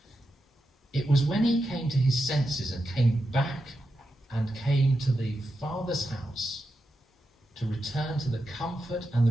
It was when he came to his senses and came back and came to the father's house to return to the comfort and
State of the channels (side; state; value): both; normal; correlation 0.88